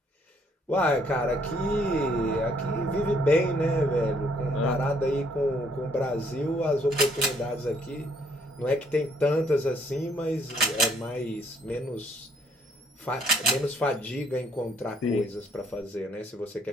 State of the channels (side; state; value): both; normal; correlation 0.66